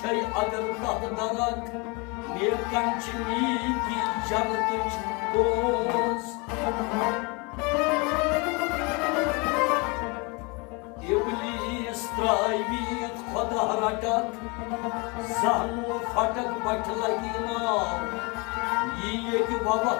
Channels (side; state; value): right; quieter; 29.4 dB